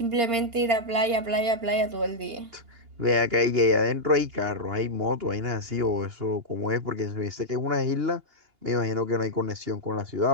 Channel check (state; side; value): late; left; 2.8 ms